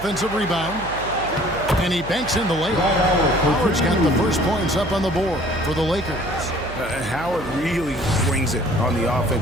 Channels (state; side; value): noise; right; hum, 13 dB below the sound